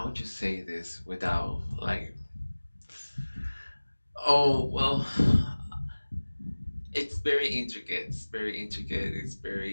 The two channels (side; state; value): both; inverted; correlation -1.00